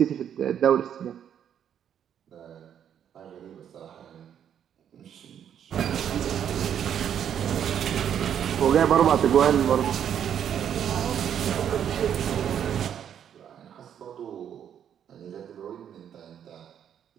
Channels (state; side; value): quieter; left; 9.1 dB